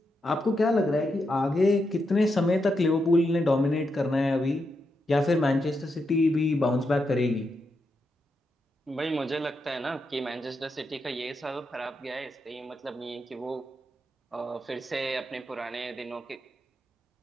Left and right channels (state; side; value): normal; both; correlation 0.84